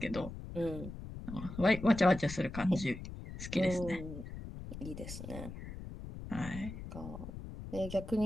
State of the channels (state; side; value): noise; left; rumble, 10 dB below the sound